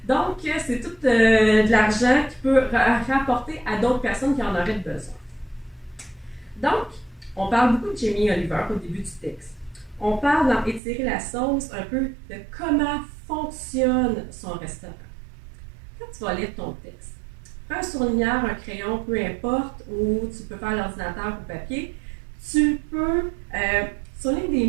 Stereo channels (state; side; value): drops out; left; at 10.8 s